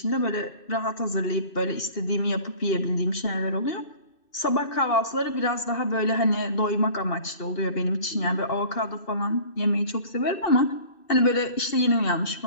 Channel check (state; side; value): late; right; 2.6 ms